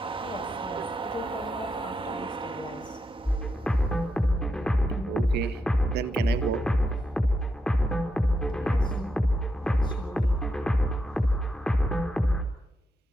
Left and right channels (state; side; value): normal; both; correlation 0.84